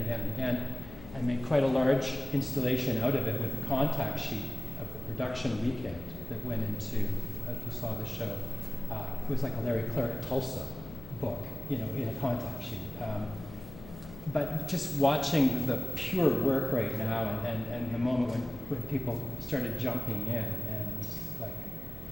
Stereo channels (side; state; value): left; noise; hum, 16 dB below the sound